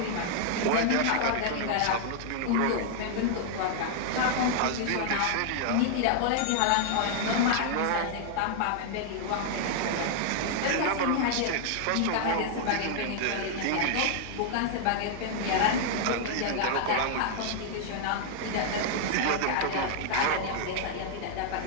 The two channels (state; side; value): different; both; correlation -0.01